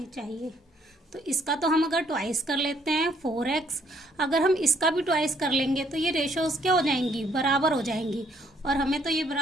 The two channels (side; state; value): both; normal; correlation 0.67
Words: चाहिए। तो इसका तो हम अगर ट्वाइस कर लेते हैं 4x, अगर हम इसका भी ट्वाइस कर लेंगे तो ये रेशोज क्या हो जाएंगी, बराबर हो जाएंगी, और हमें तो ये